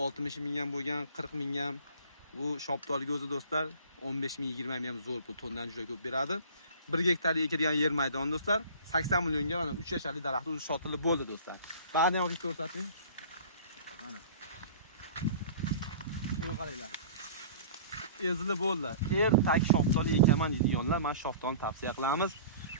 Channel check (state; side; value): inverted; both; correlation -0.43